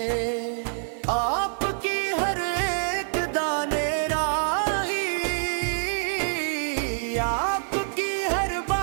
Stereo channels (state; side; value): silent; left; 56 dB below the other